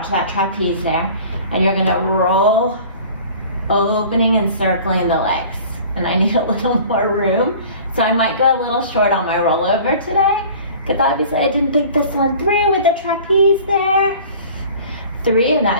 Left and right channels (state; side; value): inverted; both; correlation -0.45